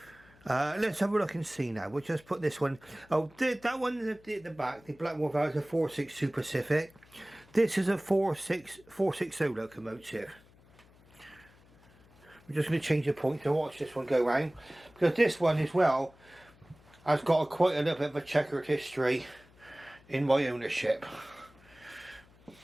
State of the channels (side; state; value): left; noise; hum, 27 dB below the sound